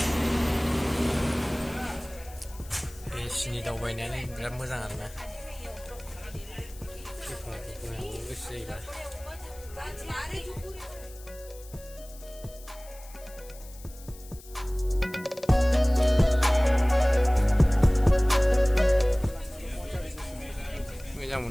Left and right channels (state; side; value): noise; left; hiss, 20 dB below the sound